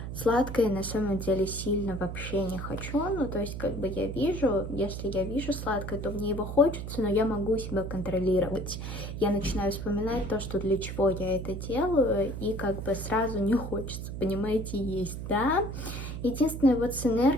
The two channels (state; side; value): noise; right; hum, 6 dB below the sound